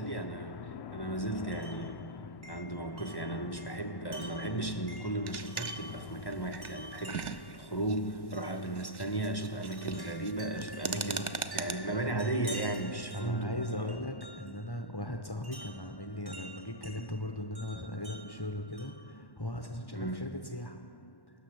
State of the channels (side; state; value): right; late; 1.1 ms